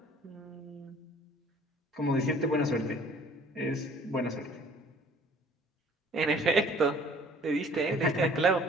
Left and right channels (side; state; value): both; normal; correlation 0.54